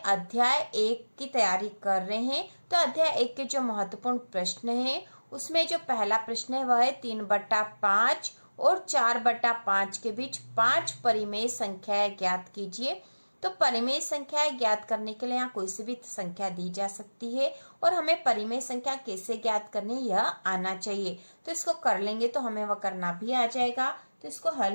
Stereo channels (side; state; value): both; inverted; correlation -1.00